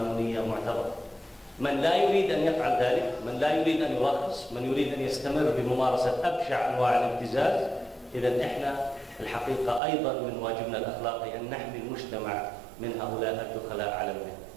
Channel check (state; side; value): drops out; left; at 9.8 s